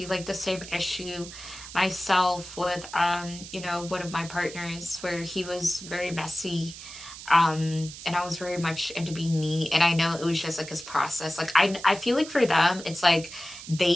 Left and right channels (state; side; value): noise; right; hiss, 13 dB below the sound